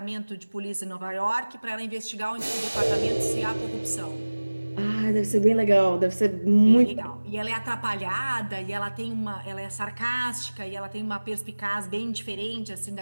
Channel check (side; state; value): both; inverted; correlation -1.00